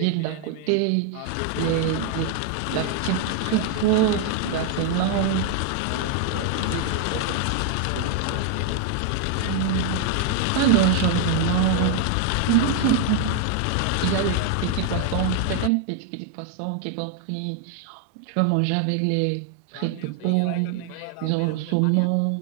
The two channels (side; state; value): both; different; correlation 0.00